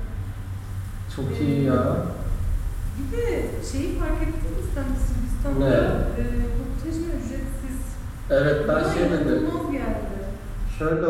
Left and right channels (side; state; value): both; identical; correlation 1.00